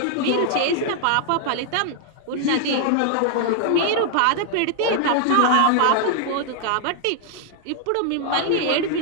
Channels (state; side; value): different; both; correlation 0.00